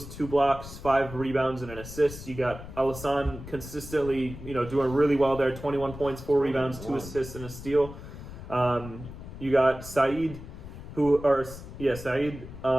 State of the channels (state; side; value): noise; left; rumble, 12 dB below the sound